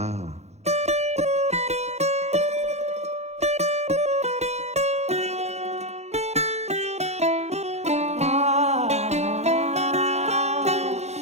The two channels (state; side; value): late; left; 0.32 ms